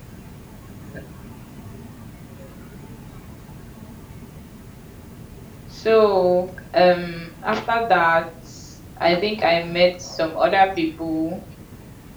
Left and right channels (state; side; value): identical; both; correlation 1.00